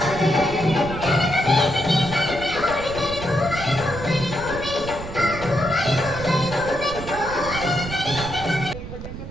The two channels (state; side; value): noise; right; rumble, 10 dB below the sound